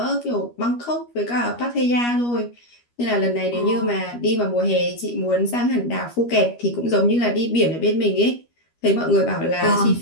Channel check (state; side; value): late; right; 13 ms